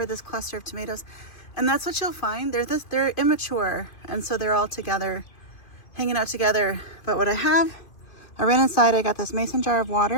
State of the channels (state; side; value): late; right; 2.1 ms